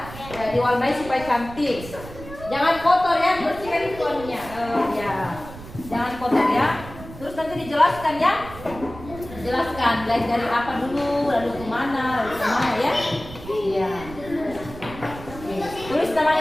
Ya, diwarnai supaya cantik. Jangan kotor ya, bersihkan itu anunya. Ya, jangan kotor ya. Terus nanti dijelaskan ya. Jelaskan dari apa dulu, lalu kemana ya. Iya. Tulis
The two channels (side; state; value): right; noise; rumble, 14 dB below the sound